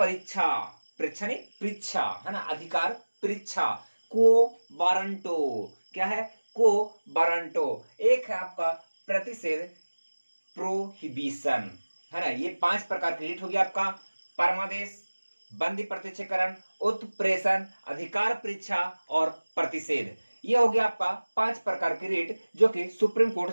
परीक्षा नहीं, परीक्षा, है ना। अधिकार परीक्षा को वारंटो। क्या है? को वारंटो। एक है आपका प्रतिषेध प्रोहिबिशन, है ना। ये 5 प्रकार की रीट होगी आपका। परमादेश, बंदी प्रत्यक्षीकरण, उत्प्रेषण, अधिकार परीक्षा और प्रतिषेध। ये हो गया आपका 5 प्रकार की रीट जो कि सुप्रीम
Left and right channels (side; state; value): both; inverted; correlation -1.00